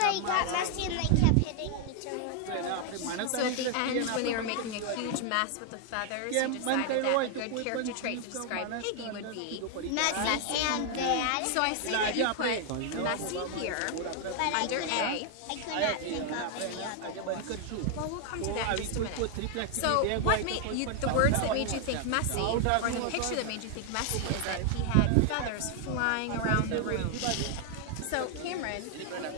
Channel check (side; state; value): both; different; correlation 0.00